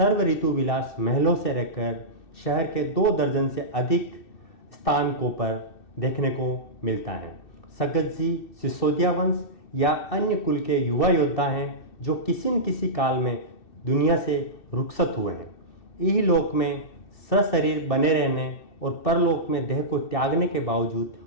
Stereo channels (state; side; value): late; right; 2.6 ms